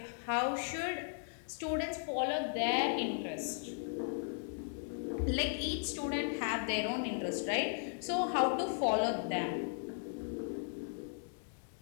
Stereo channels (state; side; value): silent; right; digital silence